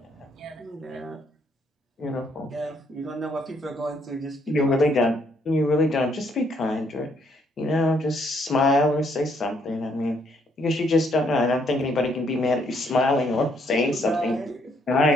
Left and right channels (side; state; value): both; normal; correlation 0.70